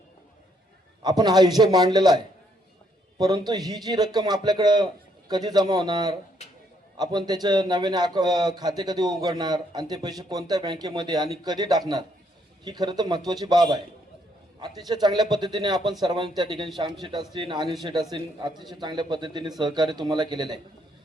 आपण हा हिशोब मांडलेला आहे, परंतु ही जी रक्कम आपल्याकडं कधी जमा होणार, आपण त्याचे नव्याने खाते कधी उघडणार आणि ते पैसे कोणत्या बँकेमध्ये आणि कधी टाकणार, ही खरं तर महत्त्वाची बाब आहे. अतिशय चांगल्या पद्धतीने आपण सर्वांनी त्या ठिकाणी श्याम शेठ असतील, अनिल शेठ असतील, अतिशय चांगल्या पद्धतीने सहकार्य तुम्हाला केलेलं आहे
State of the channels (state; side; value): normal; both; correlation 0.71